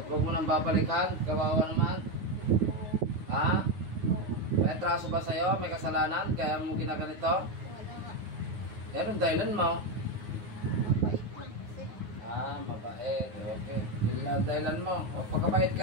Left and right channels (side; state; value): left; late; 9.5 ms